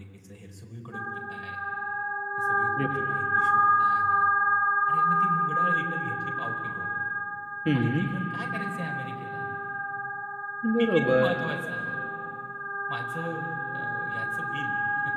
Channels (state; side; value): identical; both; correlation 1.00